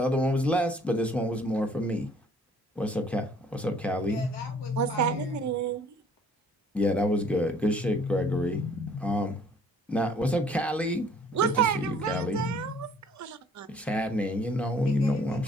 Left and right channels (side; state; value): both; normal; correlation 0.58